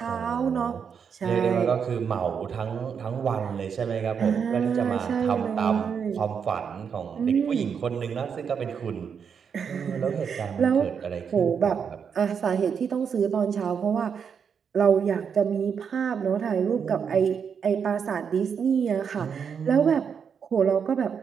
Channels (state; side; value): quieter; left; 6.9 dB